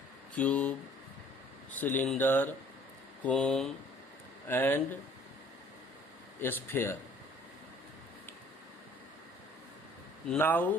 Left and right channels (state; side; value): normal; both; correlation 0.55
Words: cube, cylinder, cone and sphere.